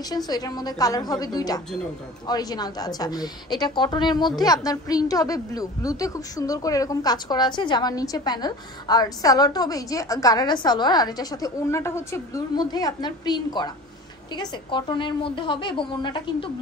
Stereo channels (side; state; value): both; normal; correlation 0.39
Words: সো এটার মধ্যে কালার হবে দুইটা, অরিজিনালটা। আচ্ছা, এটা কটনের মধ্যে আপনার প্রিন্ট হবে ব্লুতে খুব সুন্দর করে এরকম কাজ করা আছে, জামার নিচে প্যানেল। আর সালোয়ারটা হবে এই যে গারারা সালোয়ার, আর এটার সাথে ওড়নাটা হচ্ছে ব্লুর মধ্যে আপনার প্রিন্ট করা, ঠিক আছে, কটনের মধ্যে হবে। এবং ওড়নাটা কিন্তু